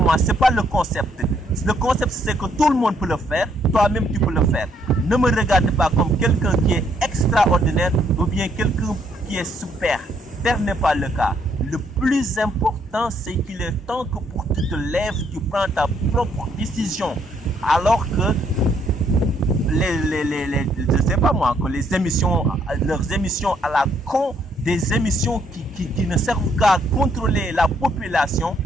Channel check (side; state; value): both; normal; correlation 0.70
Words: ce n'est pas le concept. Le concept, c'est que tout le monde peut le faire, toi-même tu peux le faire. Ne me regarde pas comme quelqu'un qui est extraordinaire ou bien quelqu'un qui est super. Tel n'est pas le cas. Le plus important, c'est qu'il est temps que pour que tu te lèves, tu prends ta propre décision. Alors que je sais pas moi, que les émissions, leurs émissions à la con, des émissions qui ne servent qu'à contrôler la population,